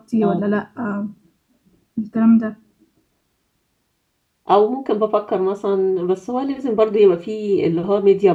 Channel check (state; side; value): identical; both; correlation 1.00